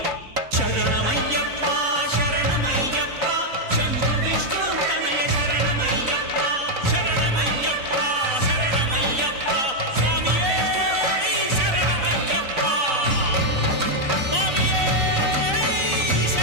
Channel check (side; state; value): left; late; 3.9 ms